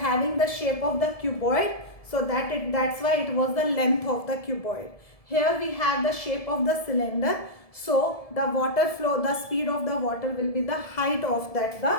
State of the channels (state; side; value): late; right; 1.7 ms